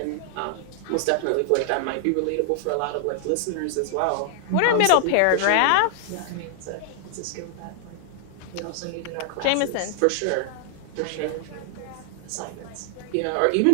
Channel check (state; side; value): different; both; correlation 0.00